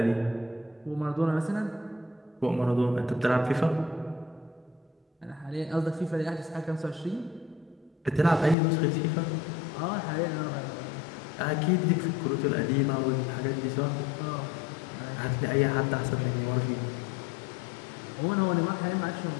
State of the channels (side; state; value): right; drops out; at 8.6 s